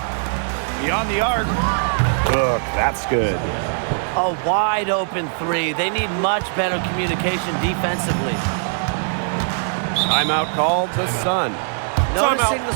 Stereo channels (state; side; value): silent; left; digital silence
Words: Beyond the arc. Look, that's good. A wide open 3. They need much better communication defensively. Timeout called the Sun. Noticing the